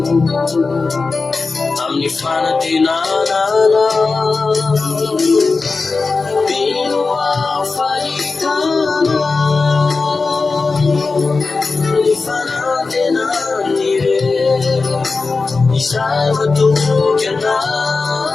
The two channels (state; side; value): quieter; right; 4.1 dB